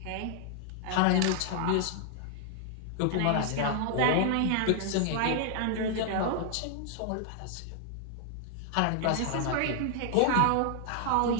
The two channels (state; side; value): different; both; correlation -0.01